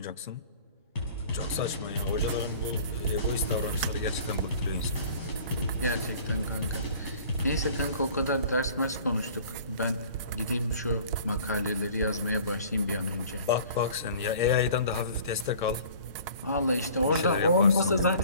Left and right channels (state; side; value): inverted; both; correlation -0.48